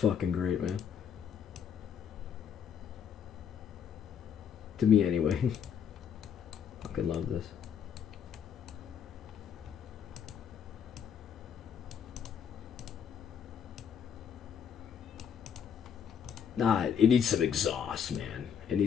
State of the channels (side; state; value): right; quieter; 7.8 dB